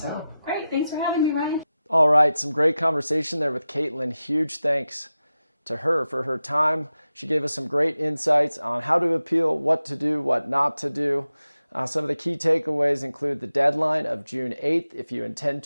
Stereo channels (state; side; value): inverted; both; correlation -0.93